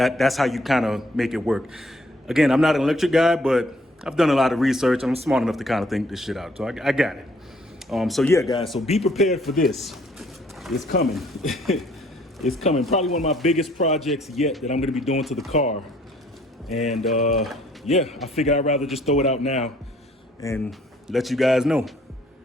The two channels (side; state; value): both; normal; correlation 0.62